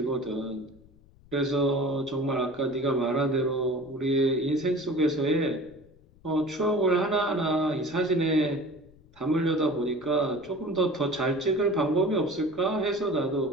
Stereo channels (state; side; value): noise; left; rumble, 27 dB below the sound